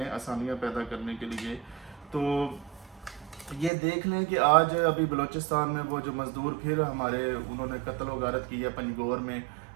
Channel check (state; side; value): drops out; left; at 3.7 s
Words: آسانیاں پیدا کرنے کے لیے۔ تو یہ دیکھ لیں کہ آج ابھی بلوچستان میں وہ جو مزدور پھر ہمارے انہوں نے قتل و غارت کی ہے پنجگور میں،